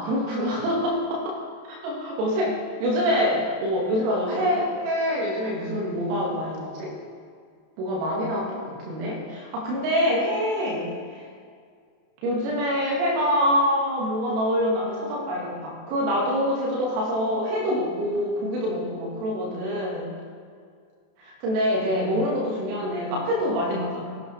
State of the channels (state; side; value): late; left; 32 ms